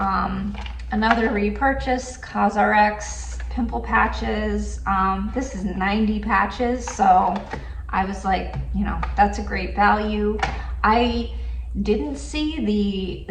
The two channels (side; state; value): both; identical; correlation 1.00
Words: another repurchase, Cosrx pimple patches. This is 90 patches, so I was like, you know, that's a great value. I didn't see